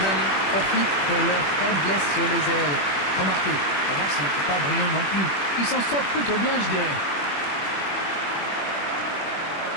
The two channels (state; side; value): late; right; 21 ms